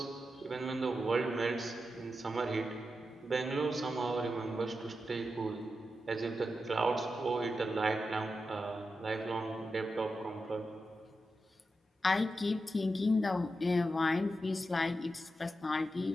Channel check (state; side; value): normal; both; correlation 0.89